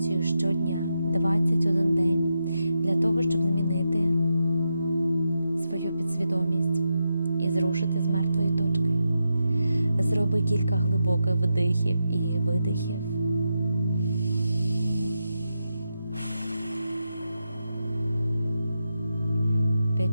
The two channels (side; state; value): both; inverted; correlation -0.87